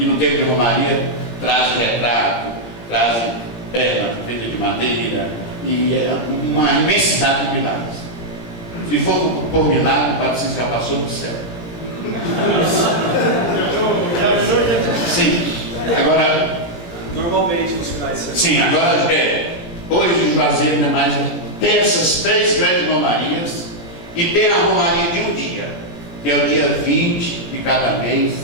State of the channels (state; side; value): late; right; 17 ms